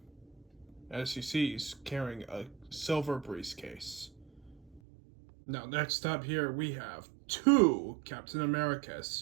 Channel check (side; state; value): left; drops out; at 4.8 s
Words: As you see, he's carrying a silver briefcase. Now, next up here, we have two Captain